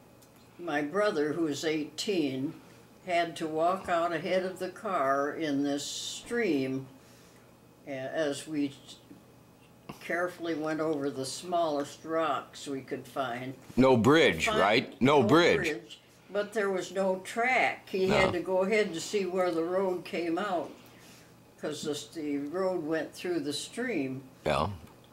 my brother, who was 18, had to walk out ahead of the car in this stream as we carefully went over the smallest rocks we could find. No bridge, right? No bridge. But there was no track. He had to go ahead to see where the road came out, because the road went through the stream. Yeah.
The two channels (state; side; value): identical; both; correlation 1.00